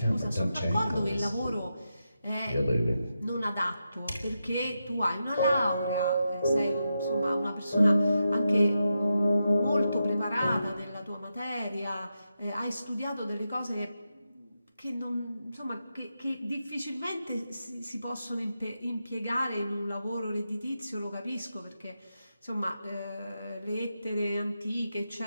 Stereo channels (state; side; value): inverted; both; correlation -0.87